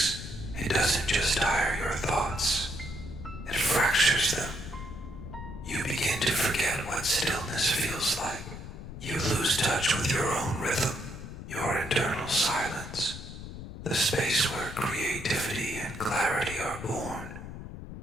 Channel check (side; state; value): left; noise; rumble, 10 dB below the sound